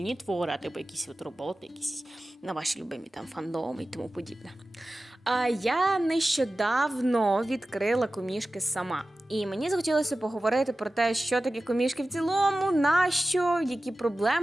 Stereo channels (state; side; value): normal; both; correlation 0.95